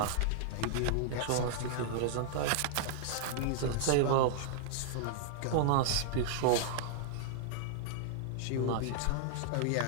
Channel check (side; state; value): both; different; correlation -0.01